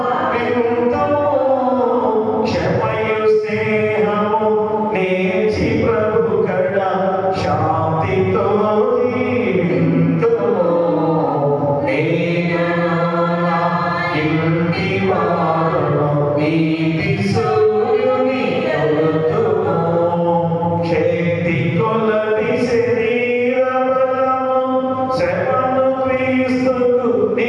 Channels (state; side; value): identical; both; correlation 1.00